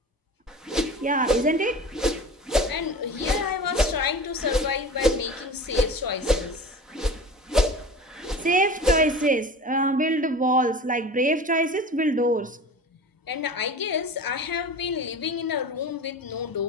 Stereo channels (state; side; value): normal; both; correlation 0.35